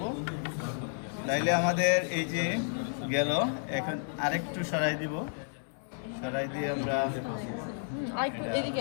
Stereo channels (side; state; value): right; silent; 57 dB below the other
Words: তাইলে আমাদের এই যে গেল, এখন আরেকটু সরাই দিব, সরাই দিয়ে আমরা